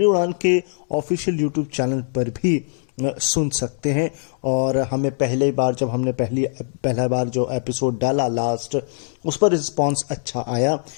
उड़ान के ऑफिशियल यूट्यूब चैनल पर भी सुन सकते हैं। और हमें पहले बार जब हमने पहला बार जो एपिसोड डाला लास्ट, उस पर रिस्पॉन्स अच्छा आया,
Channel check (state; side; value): silent; right; 64 dB below the other